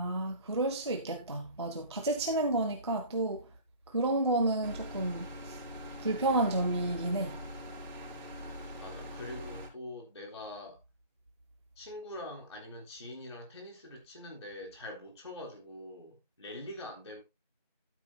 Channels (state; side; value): inverted; both; correlation -0.40